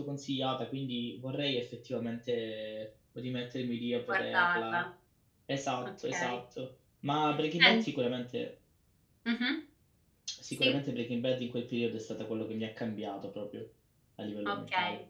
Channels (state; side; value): identical; both; correlation 1.00